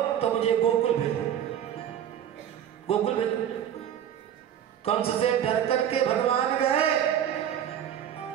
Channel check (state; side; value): quieter; left; 9.9 dB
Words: तो मुझे गोकुल भेजो, गोकुल भेजो। कंस से डर करके भगवान गए।